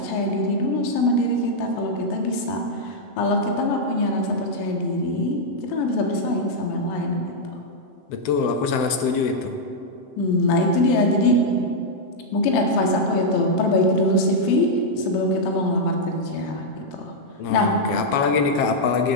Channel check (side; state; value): right; late; 7.7 ms